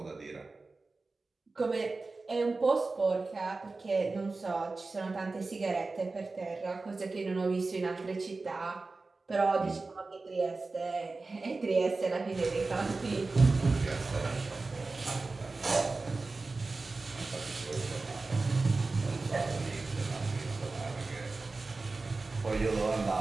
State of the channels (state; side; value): quieter; left; 3.7 dB